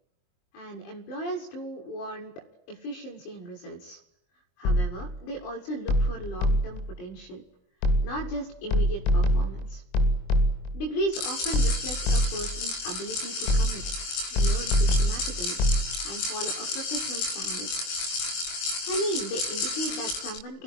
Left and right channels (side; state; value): right; late; 23 ms